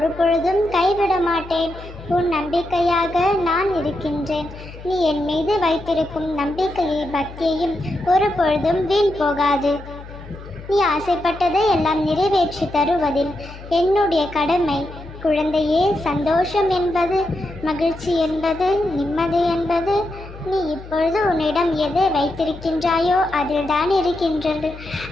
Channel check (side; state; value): left; noise; hum, 15 dB below the sound